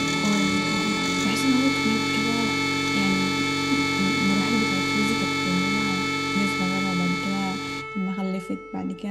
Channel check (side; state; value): left; noise; hum, 30 dB below the sound